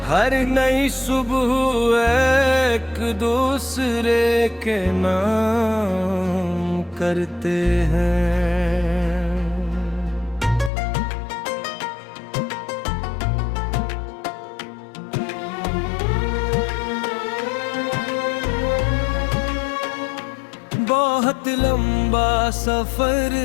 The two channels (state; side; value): drops out; right; at 10.7 s